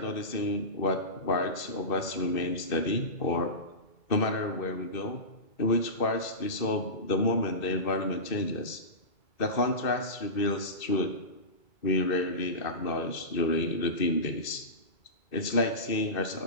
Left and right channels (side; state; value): right; late; 2.6 ms